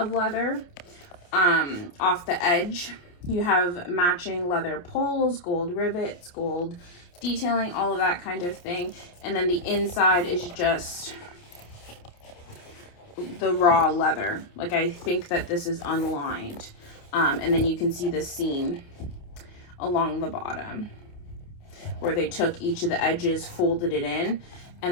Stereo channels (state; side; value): late; right; 28 ms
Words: leather off the edge. You have matching leather pulls, gold rivets, gold detailing, all of that kind of thing. And then the inside is just the raw leather. Like, I think that this is unlined. And then you can see the seam along the bottom where they took each of the edges, folded it in,